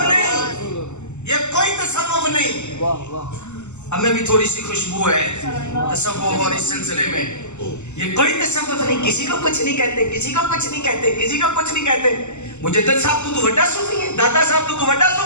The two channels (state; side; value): late; right; 0.83 ms